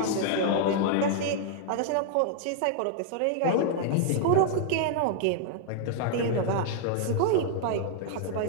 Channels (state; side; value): different; both; correlation -0.01